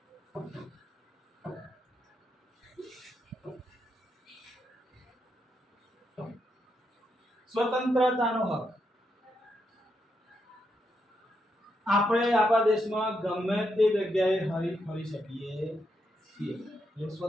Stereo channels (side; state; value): both; normal; correlation 0.81